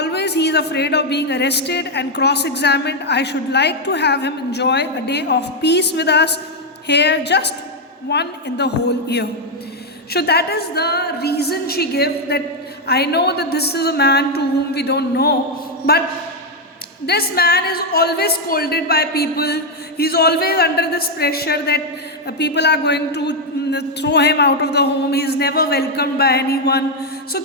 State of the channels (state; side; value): normal; both; correlation 0.02